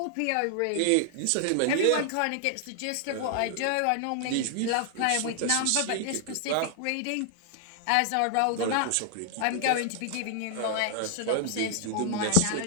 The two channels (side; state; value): both; different; correlation 0.00